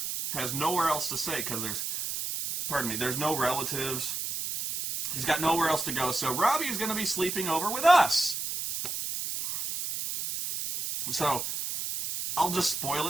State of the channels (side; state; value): right; noise; hiss, 3 dB below the sound